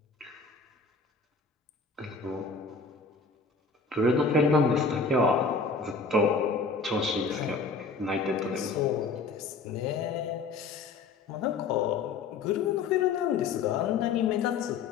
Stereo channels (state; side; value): quieter; right; 4.5 dB